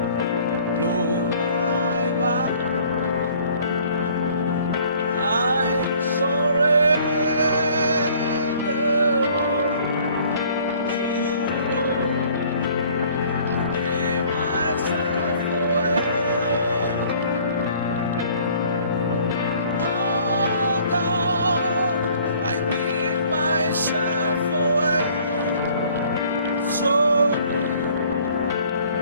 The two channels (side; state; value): both; inverted; correlation -0.55